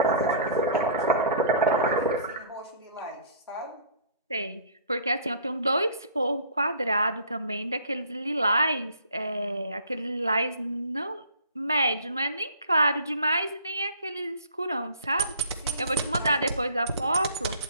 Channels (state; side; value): inverted; both; correlation -0.50